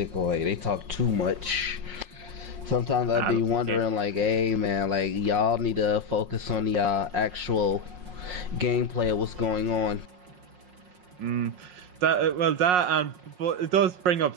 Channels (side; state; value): left; late; 5.6 ms